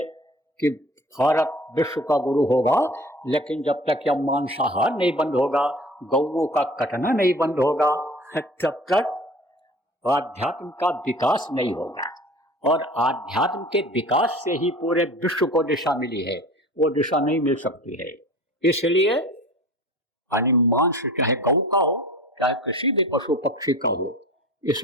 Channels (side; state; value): both; normal; correlation 0.41